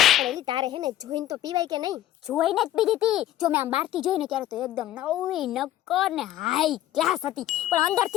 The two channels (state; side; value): quieter; right; 13.3 dB